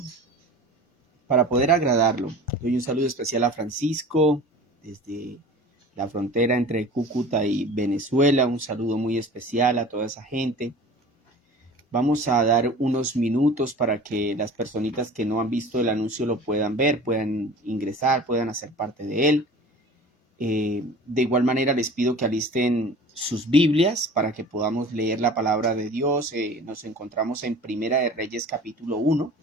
para poder agradarlo. Doy un saludo especial a Francisco desde la frontera entre Cúcuta y Venezuela. Un saludo muy especial a toda esa gente. Vamos a dar unos minutos para que las personitas que no han visto el anuncio lo puedan ver, puedan ingresar, puedan hacer parte de él. De igual manera les pido que alisten sus Biblias para que podamos leer la palabra de Dios. Nos encontramos en Primera de Reyes capítulo 1.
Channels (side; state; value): both; normal; correlation 0.41